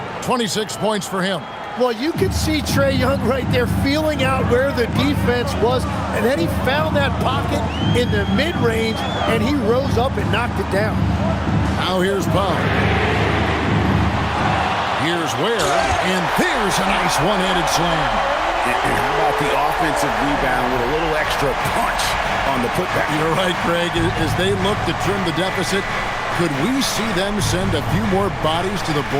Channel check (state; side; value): identical; both; correlation 1.00